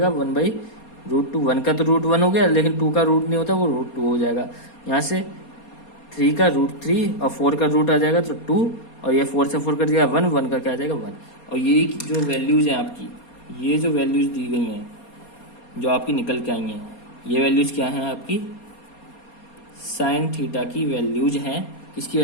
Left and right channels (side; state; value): right; late; 4.3 ms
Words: 1/√2। 1 का तो रूट 1 हो गया, लेकिन 2 का रूट नहीं होता, वो √2 हो जाएगा। यहाँ से 3 का √3 और 4 का रूट आ जाएगा तो 2, और ये 4 से 4 कट जाएगा 1, 1 का क्या आ जाएगा 1। और ये जो वैल्यूज हैं आपकी, ये जो वैल्यूज दी गई हैं जो आपकी निकल के आई हैं, ये वैल्यूज क्या हैं आपकी, साइन थीटा की वैल्यूज हैं। किसकी